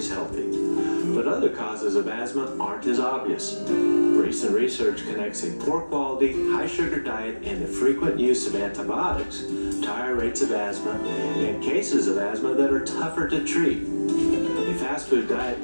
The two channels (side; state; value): both; inverted; correlation -1.00